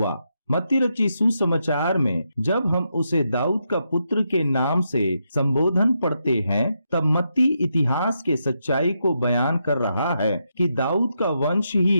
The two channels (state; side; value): inverted; both; correlation -0.83